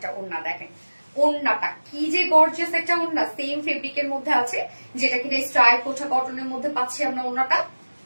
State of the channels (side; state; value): both; inverted; correlation -1.00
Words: ওড়না, দেখেন ওড়নাটা কি যে গর্জিয়াস একটা ওড়না, সেম ফেব্রিকের মধ্যে আছে, যেটা কিনা স্ট্রাইপ কোঠা কটনের মধ্যে পাচ্ছি আমরা। ওড়নাটা